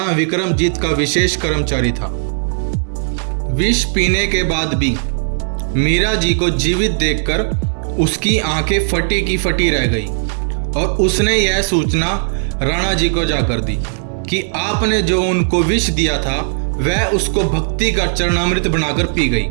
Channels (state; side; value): silent; left; digital silence